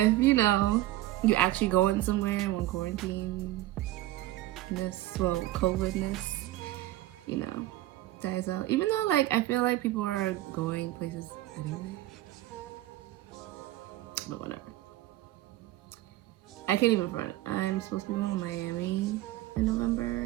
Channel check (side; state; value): left; quieter; 16.0 dB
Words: you know, you actually going somewhere when quarantine well, COVID-ness, you know, dies out. Even though, like, I feel like people are going places anyway. But whatever. I can't even front. I'm supposed to be going to Miami in